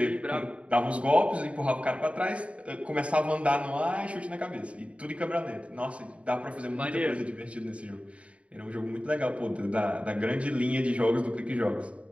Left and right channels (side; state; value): left; late; 0.063 ms